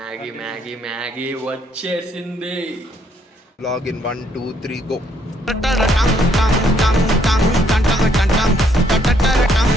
మ్యాగీ మ్యాగీ వచ్చేసింది. Login 1 2 3 go.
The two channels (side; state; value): both; normal; correlation 0.70